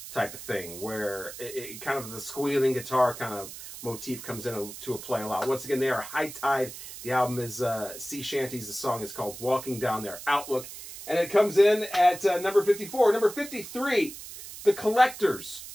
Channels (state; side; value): noise; right; hiss, 12 dB below the sound